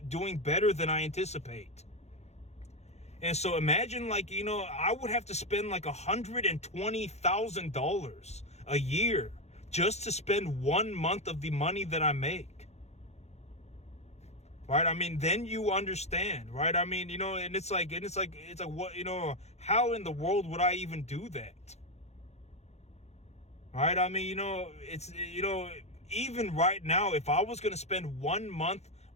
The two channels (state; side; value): late; right; 0.32 ms